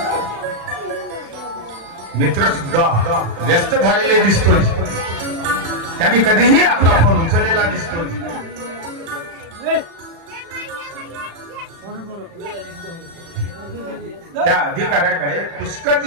मित्र सुद्धा व्यस्त झालेले दिसतोय. त्यांनी कधीही आपला फोन उचललेला दिसतोय. त्या अधिकाऱ्याकडे पुष्कळ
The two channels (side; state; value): left; late; 36 ms